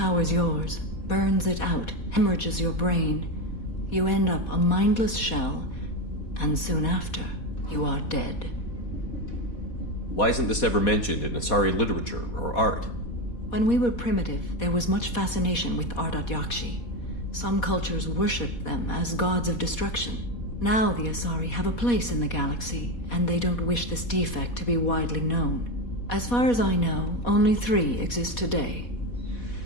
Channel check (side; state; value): right; late; 4.2 ms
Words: yours, burns it out, hemorrhages your brain. You end up a mindless shell, and soon after, you are dead. Why isn't this ever mentioned in Asari literature or art? When we were primitive, there was much fascination with Ardat-Yakshi. Some cultures worshipped them as gods of destruction. Now the Asari have a place in the galaxy, and they don't wish this defect to be widely known. As far as I know, only 3 exist today.